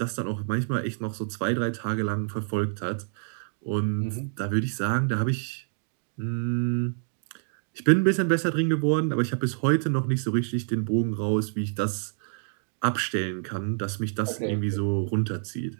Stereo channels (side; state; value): left; silent; digital silence